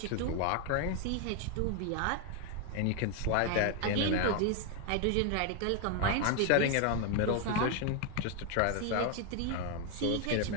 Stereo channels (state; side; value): different; both; correlation 0.01